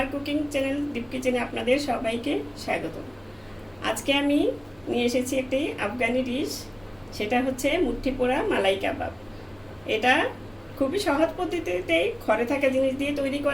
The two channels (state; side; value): noise; right; hum, 30 dB below the sound